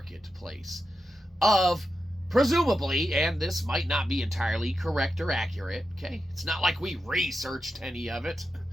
of, presumably, and this might not be entirely correct or accurate, okay? It's not like we researched any of it.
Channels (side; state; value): both; normal; correlation 0.89